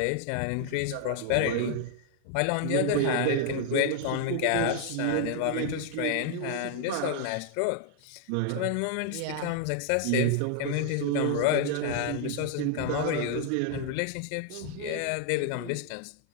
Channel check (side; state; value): both; different; correlation 0.00